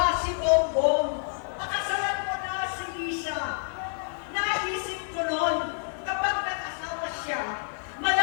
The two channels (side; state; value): right; silent; 57 dB below the other